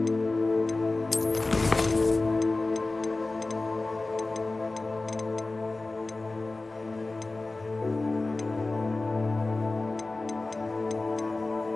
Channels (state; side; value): quieter; right; 3.3 dB